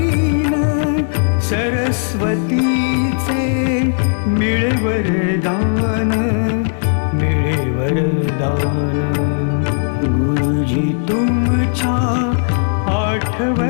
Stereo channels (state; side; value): silent; right; digital silence